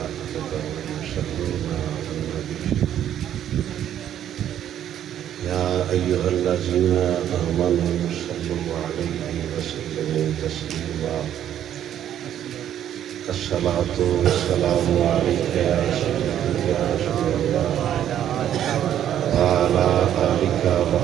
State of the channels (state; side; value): quieter; left; 10.7 dB